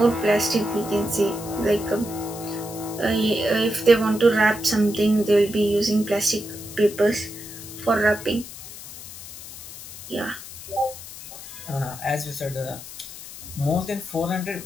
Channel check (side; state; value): left; noise; hiss, 13 dB below the sound